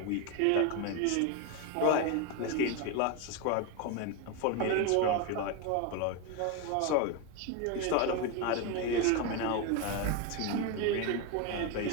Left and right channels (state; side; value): different; both; correlation 0.02